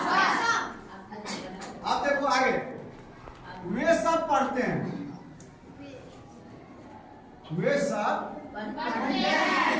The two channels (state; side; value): identical; both; correlation 1.00